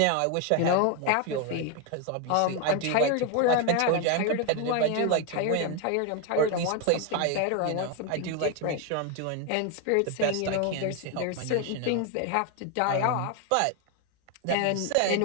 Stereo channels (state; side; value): different; both; correlation 0.01